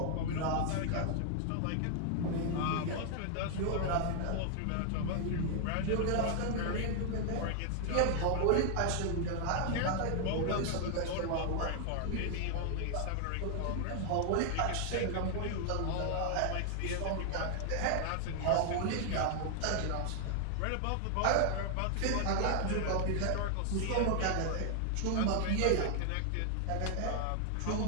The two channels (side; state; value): both; different; correlation 0.00